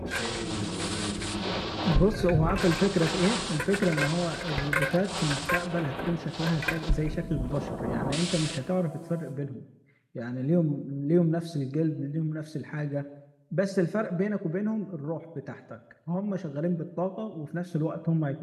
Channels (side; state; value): both; identical; correlation 1.00